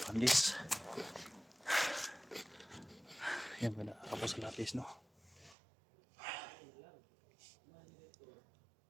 Yan, wala ako sa lapis, no?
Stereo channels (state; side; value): drops out; left; at 5.6 s